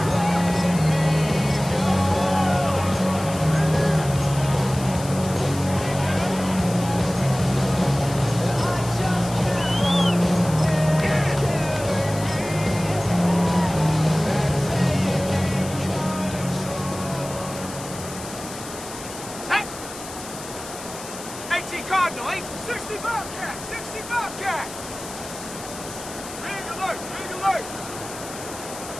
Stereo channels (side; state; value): left; noise; hiss, 13 dB below the sound